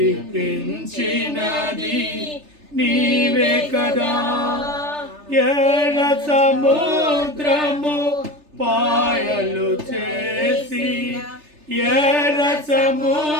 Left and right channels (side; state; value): left; late; 3.3 ms